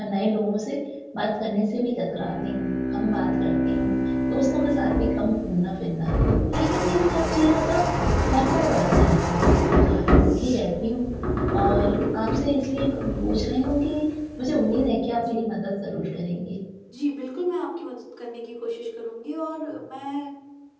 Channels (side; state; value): both; identical; correlation 1.00